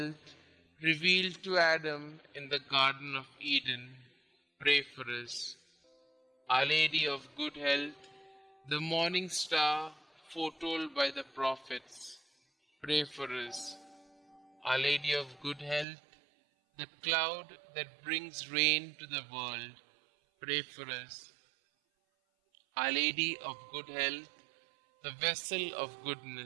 revealed to Adam in the Garden of Eden, pray for us. Our Lady of Good Health, the morning star foretold by the prophets, pray for us. Our Lady of Good Health, the cloud that brings rain to the world, pray for us. Our Lady of Good Health, the vessel of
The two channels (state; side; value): drops out; left; at 15.9 s